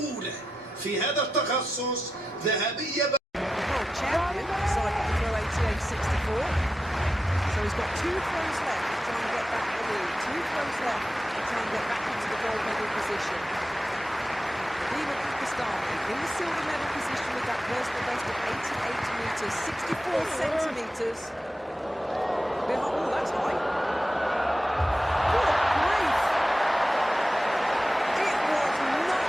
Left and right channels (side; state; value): both; normal; correlation 0.91